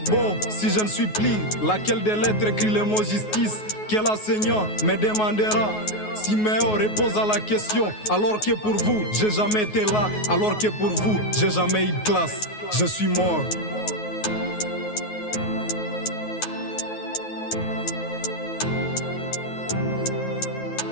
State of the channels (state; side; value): late; right; 9.4 ms